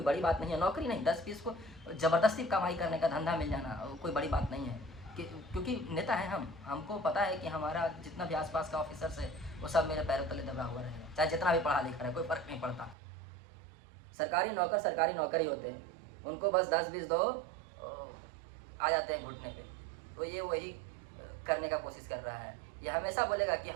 बड़ी बात नहीं है, नौकरी नहीं, 10-20 को ज़बरदस्ती कमाई करने का धंधा मिल जाना कोई बड़ी बात नहीं है। क्योंकि नेता है हम, हमको पता है कि हमारा जितना भी आसपास का ऑफिसर्स है वो सब मेरे पैरों तले दबा हुआ रहेगा, चाहे जितना भी पढ़ा लिखा है, कोई फ़र्क नहीं पड़ता। सरकारी नौकर ही होते हैं, उनको बस 10-20 दो आ जाते हैं घुटने पे। तो ये वही करने का कोशिश कर रहा है। ये हमेशा बोलेगा कि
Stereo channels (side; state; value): left; drops out; at 13.0 s